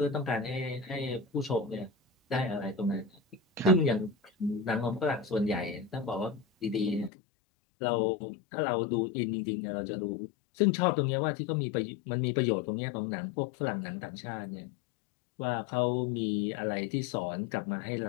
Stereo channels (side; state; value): right; drops out; at 7.1 s